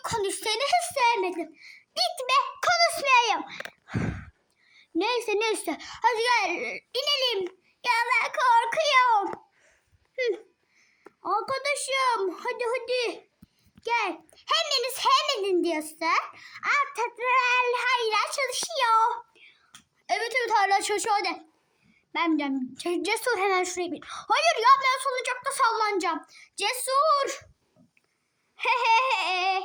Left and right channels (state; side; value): identical; both; correlation 1.00